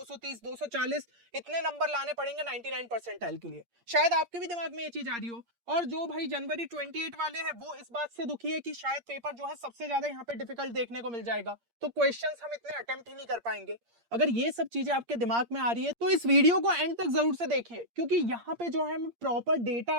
240 इतने नंबर लाने पड़ेंगे 99 परसेंटाइल के लिए। शायद आपके भी दिमाग में ये चीज आ रही हो। और जो भाई जनवरी 28 वाले हैं वो इस बात से दुखी है कि शायद पेपर जो है सबसे ज्यादा यहाँ पे डिफिकल्ट देखने को मिल जाएगा, तो क्वेश्चंस हम इतने अटेम्प्ट ही नहीं कर पाएंगे। अगर ये सब चीजें आपके दिमाग में आ रही है तो इस वीडियो को एंड तक जरूर से देखिए क्योंकि यहाँ पे जो है मैं प्रॉपर डेटा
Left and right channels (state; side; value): late; left; 8.6 ms